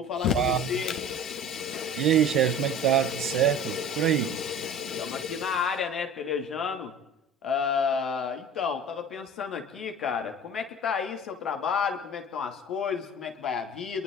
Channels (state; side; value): normal; both; correlation 0.40